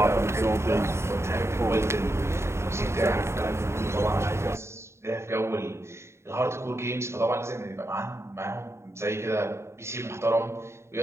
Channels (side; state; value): left; late; 0.13 ms